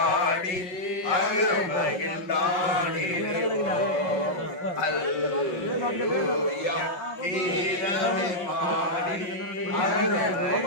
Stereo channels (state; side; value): late; right; 5.5 ms